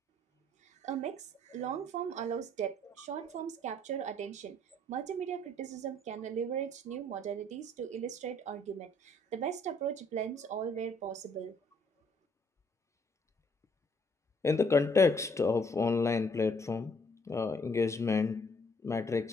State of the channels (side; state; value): both; normal; correlation 0.64